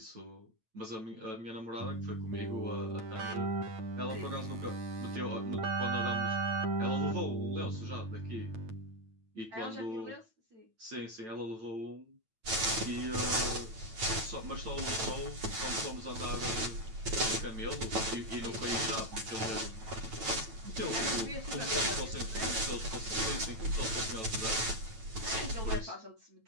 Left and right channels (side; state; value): left; late; 9.0 ms